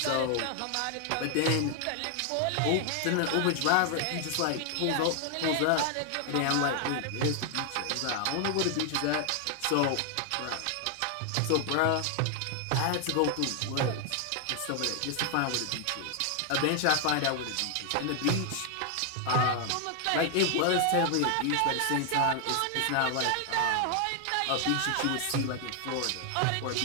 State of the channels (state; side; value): different; both; correlation 0.00